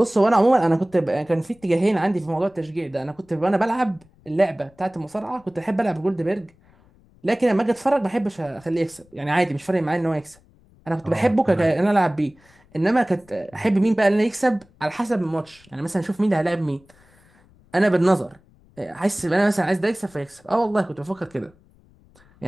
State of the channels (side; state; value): left; noise; rumble, 30 dB below the sound